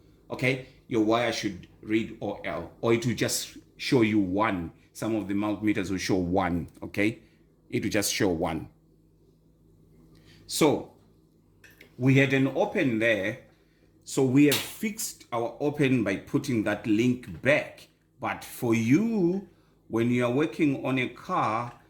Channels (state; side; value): identical; both; correlation 1.00